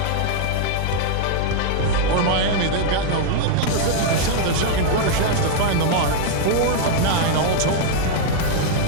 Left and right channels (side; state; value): both; different; correlation -0.01